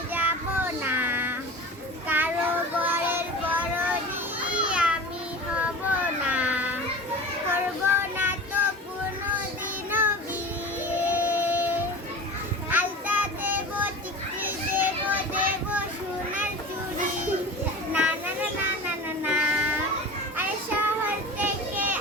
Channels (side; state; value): both; normal; correlation 0.34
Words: যাব না, কারো ঘরের বড়নি আমি হব না, করব না তো কোনোদিনও বিয়ে। আলতা দেব, টিকলি দেব, দেব সোনার চুড়ি, না না না না না না না। আরে শহর থেকে